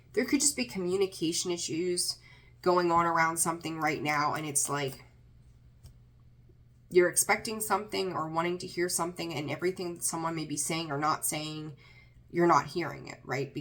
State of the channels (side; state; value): both; identical; correlation 1.00